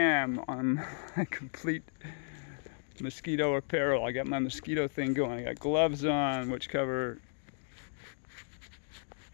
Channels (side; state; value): right; silent; digital silence